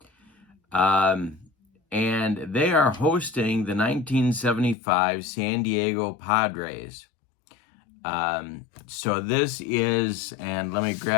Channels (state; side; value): drops out; right; at 4.8 s